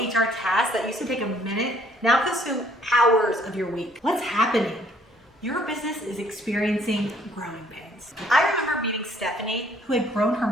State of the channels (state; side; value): normal; both; correlation 0.62